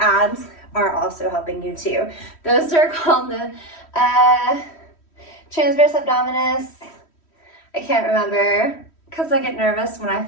are also helping you too. Those are called the transverse abdominis. I can't remember because I get nervous when I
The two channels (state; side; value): late; right; 3.1 ms